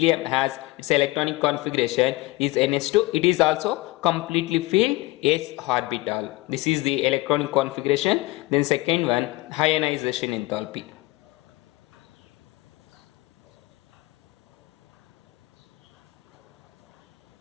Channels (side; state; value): right; quieter; 20.3 dB